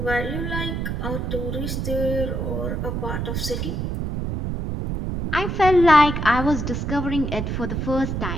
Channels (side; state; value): right; noise; rumble, 2 dB below the sound